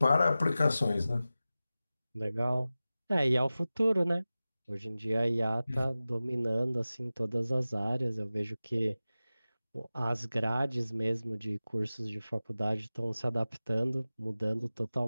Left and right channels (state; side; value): inverted; both; correlation -0.96